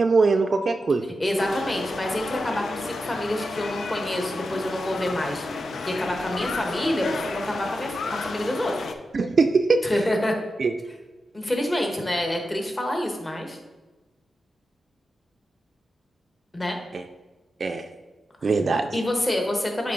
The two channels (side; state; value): both; normal; correlation 0.89